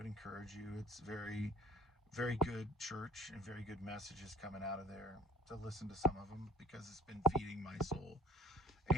encourage you. It's very, very good church and very good messages coming out of there, to listen to some of them, because it's been feeding my soul.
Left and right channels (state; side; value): normal; both; correlation 0.43